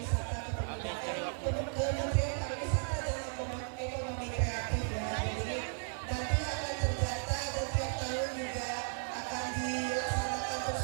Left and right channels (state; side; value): silent; left; 54 dB below the other